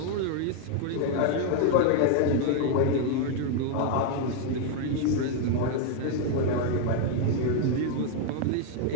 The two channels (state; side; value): different; both; correlation 0.00